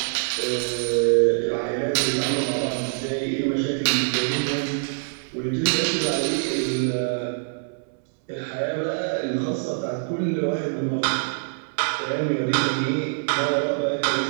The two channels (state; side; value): silent; left; 62 dB below the other